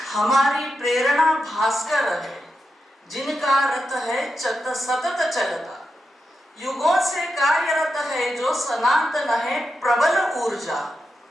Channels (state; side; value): normal; both; correlation 0.88